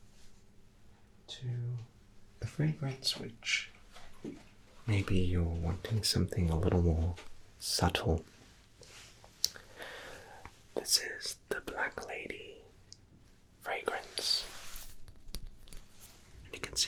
to the fragrance, which maybe you're wanting something a little more subtle. This is the Black Lady fragrance. And you can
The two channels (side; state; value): both; identical; correlation 1.00